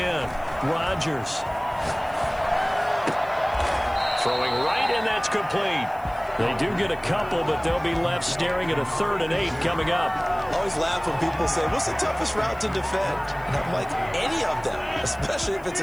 Rodgers. Throwing right, and that's complete. They do get a couple, but they'll be left staring at a 3rd and 8 coming up. I always laugh when people say, what's the toughest route to defend? And I'm like, any of them, especially if it's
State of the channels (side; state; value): left; noise; hiss, 26 dB below the sound